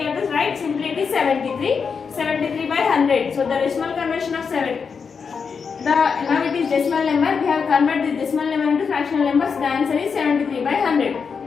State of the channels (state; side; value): quieter; right; 5.8 dB